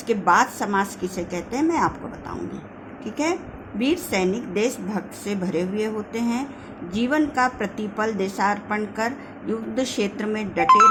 बाद समास किसे कहते हैं मैं आपको बताऊंगी। ठीक है। वीर सैनिक देशभक्त से भरे हुए होते हैं। जीवन का प्रतिपल देशार्पण कर युद्ध क्षेत्र में डटे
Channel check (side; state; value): both; identical; correlation 1.00